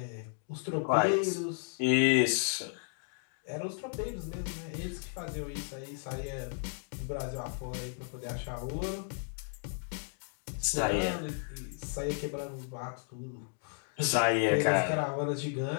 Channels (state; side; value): silent; right; 55 dB below the other